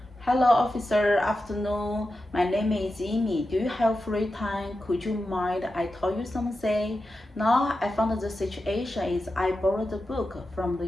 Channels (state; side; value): normal; both; correlation 0.91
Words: Hello officer, afternoon. My name is Amy. Do you have free time? Could you mind I told you something? Now I found the situation is I borrowed the book from the